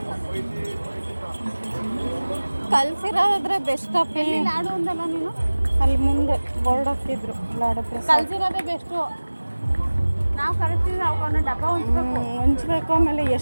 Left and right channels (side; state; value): both; inverted; correlation -1.00